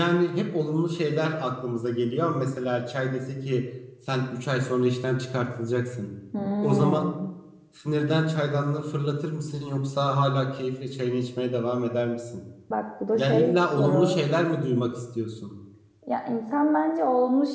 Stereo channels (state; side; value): identical; both; correlation 1.00